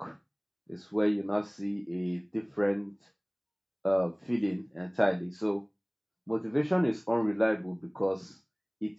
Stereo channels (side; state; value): both; identical; correlation 1.00